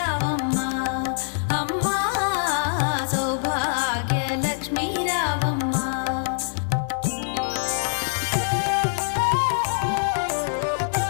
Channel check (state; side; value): silent; right; digital silence